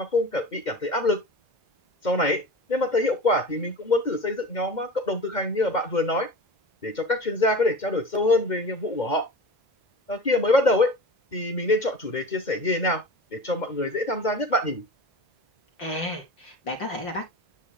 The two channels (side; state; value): right; late; 2.1 ms